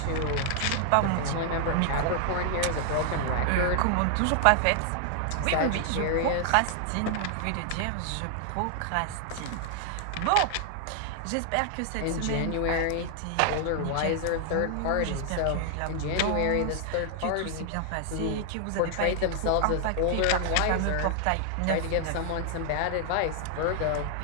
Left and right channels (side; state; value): both; different; correlation 0.00